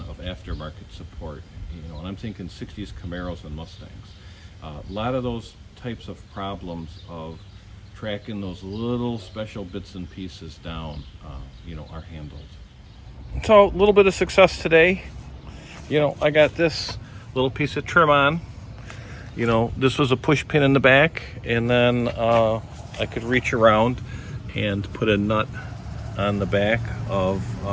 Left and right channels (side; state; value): both; identical; correlation 1.00